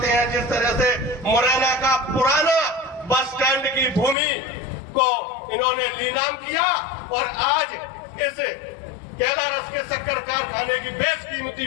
हैं। जिस तरह से मुरैना का पुराना बस स्टैंड की भूमि को इन्होंने नीलाम किया और आज इस कैलारस के शक्कर कारखाने की बेशकीमती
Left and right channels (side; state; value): right; drops out; at 4.2 s